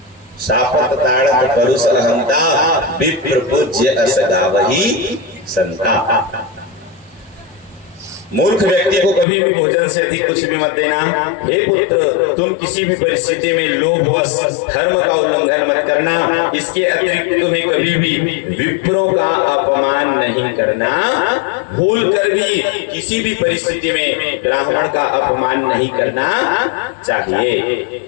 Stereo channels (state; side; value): drops out; right; at 9.2 s